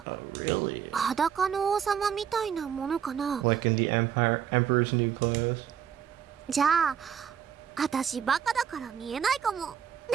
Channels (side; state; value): left; quieter; 8.6 dB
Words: Oh, really? 裸の王様みたいなものかな。 Like in the Emperor's new clothes? じゃあ私バカだから見えないかも。